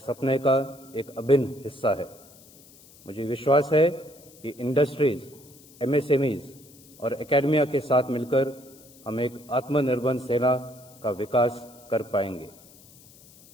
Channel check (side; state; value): left; noise; hiss, 24 dB below the sound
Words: का एक अभिन्न हिस्सा है। मुझे विश्वास है कि इंडस्ट्रीज, एमएसएमईज और एकेडमिया के साथ मिलकर हम एक आत्मनिर्भर सेना का विकास कर पाएंगे।